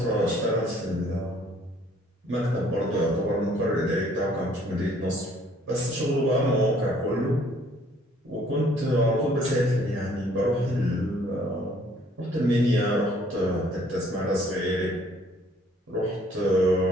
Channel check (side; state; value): both; normal; correlation 0.60